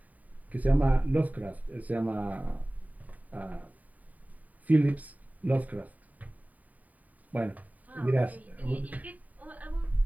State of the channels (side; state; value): left; late; 0.074 ms